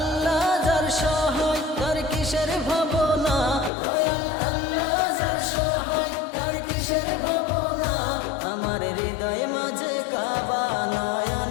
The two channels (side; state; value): right; drops out; at 3.7 s